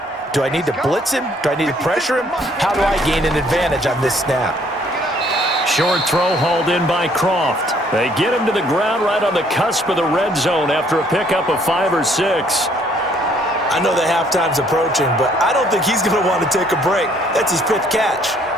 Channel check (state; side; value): normal; both; correlation 0.63